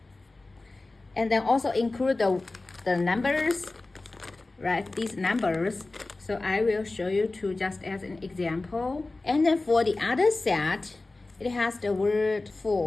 And then also include the numbers, right? These numbers. So I will show you two just as an example. And then for the other set, it has the word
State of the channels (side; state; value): right; quieter; 3.2 dB